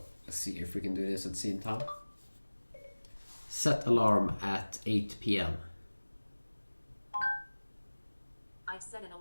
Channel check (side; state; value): both; inverted; correlation -1.00